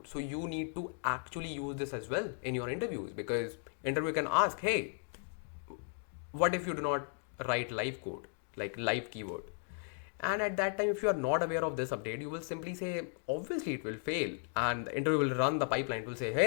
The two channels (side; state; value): right; silent; 54 dB below the other